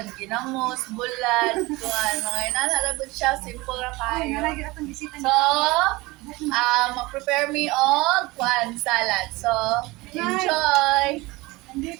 ginamos, bulan, tuwan. Mga inanalagod siya, simple ra Ay, kayo. nalagi atong bisita So, mag-prepare me og kwan salad. So, enjoy!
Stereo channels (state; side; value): quieter; left; 22.1 dB